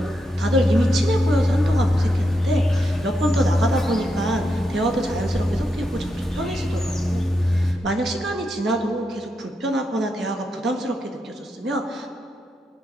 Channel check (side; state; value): both; normal; correlation 0.84